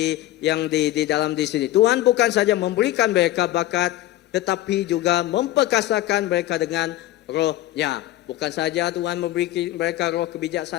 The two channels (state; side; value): quieter; right; 15.0 dB